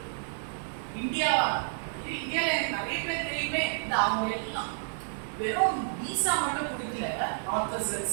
இந்தியாவா, இந்தியால எனக்கு நிறைய பேர் தெரியுமே, இந்த அவங்க எல்லாம் வெறும் விசா மட்டும் கொடுக்கல,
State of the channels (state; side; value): silent; left; digital silence